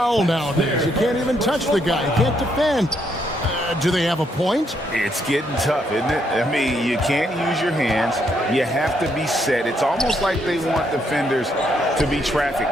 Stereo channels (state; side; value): normal; both; correlation 0.74